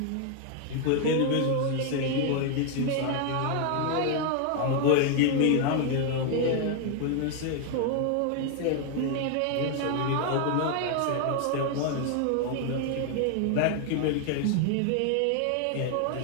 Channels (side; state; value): both; different; correlation 0.00